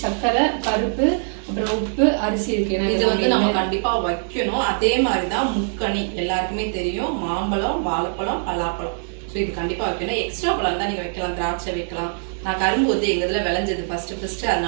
சர்க்கரை, பருப்பு, அப்புறம் உப்பு, அரிசி இருக்குது. இது வந்து நம்ம கண்டிப்பாக வைக்கணும். அதே மாதிரி தான் முக்கணி எல்லாருக்குமே தெரியும். மாம்பழம், வாழைப்பழம், பலாப்பழம். ஸோ இது கண்டிப்பாக வைக்கணும். எக்ஸ்ட்ரா பழம் தான் நீங்கள் வைக்கலாம், திராட்சை வைக்கலாம். நான் கரும்பு வந்து எங்கள் இதில் விளைஞ்சது ஃபஸ்ட்டு,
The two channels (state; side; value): silent; left; digital silence